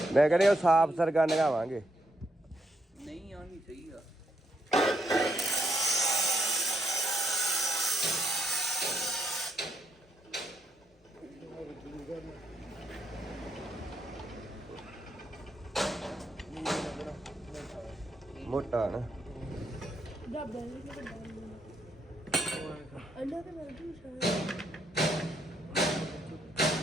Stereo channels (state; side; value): normal; both; correlation 0.76